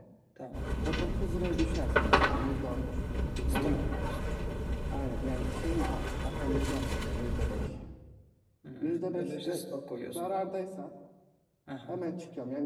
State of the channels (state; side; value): identical; both; correlation 1.00